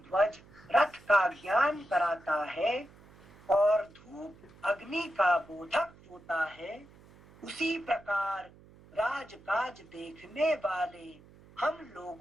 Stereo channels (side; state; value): right; noise; hum, 24 dB below the sound